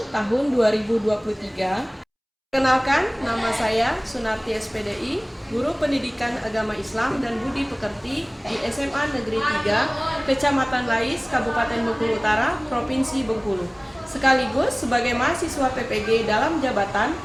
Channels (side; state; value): both; identical; correlation 1.00